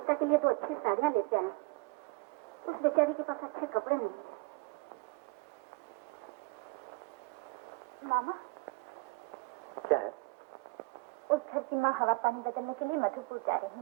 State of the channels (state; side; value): quieter; left; 25.8 dB